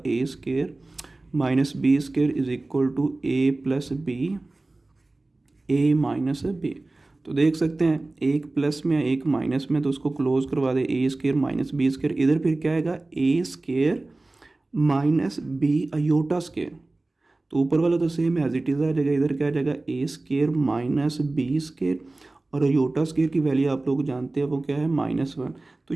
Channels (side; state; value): left; quieter; 3.0 dB